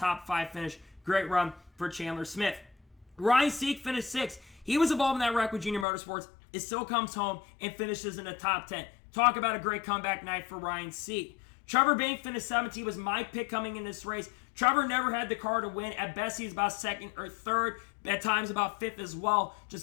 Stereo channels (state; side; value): drops out; right; at 5.9 s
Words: 5 finish. Great run for Chandler Smith. Ryan Sieg finished 6th. He was involved in that wreck with Junior Motorsports. It still comes home and finishes in the top 10. Talk about a great comeback night for Ryan Sieg. Trevor Bayne finished 7th. He was my pick coming in this race. Trevor never had the car to win. At best, he's about 2nd or 3rd. At times, about 5th as well.